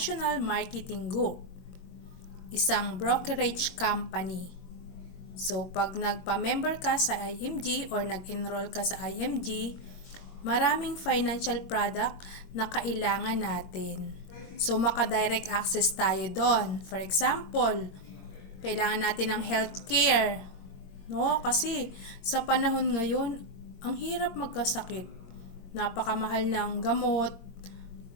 Marketing Group, isang brokerage company. So, pag nagpa-member ka sa IMG or nag-enroll ka sa IMG, maraming financial product na kailangan natin. So, maka-direct access tayo doon. For example, kailangan natin ng healthcare. No? Kasi sa panahon ngayon, ang hirap magkasakit. Napakamahal ng gamot,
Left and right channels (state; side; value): late; right; 22 ms